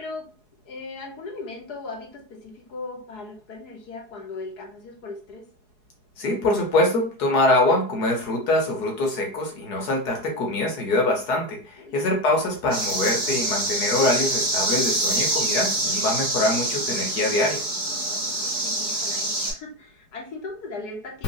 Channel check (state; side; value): late; right; 4.7 ms